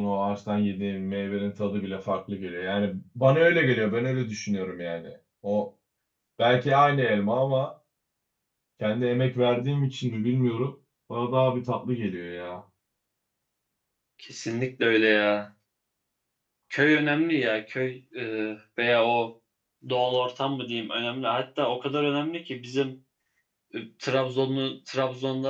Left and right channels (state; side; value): identical; both; correlation 1.00